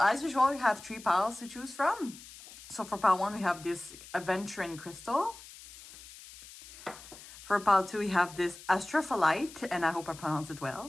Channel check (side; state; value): left; noise; hiss, 17 dB below the sound